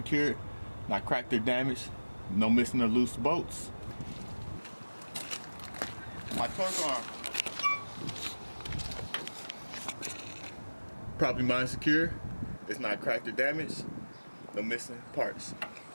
not cracked or damaged, no missing or loose bolts. My torque arm, properly mine secure, it's not cracked or damaged, no missing parts.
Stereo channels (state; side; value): inverted; both; correlation -1.00